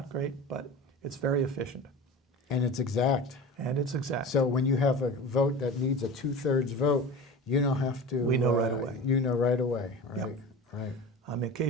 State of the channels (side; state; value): both; normal; correlation 0.33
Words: great, but it's very efficient. And it's exact. And it's exact. So when you have a vote that needs a 2/3 vote, you don't have to. We know right away. You know right away, right? Yep. Right.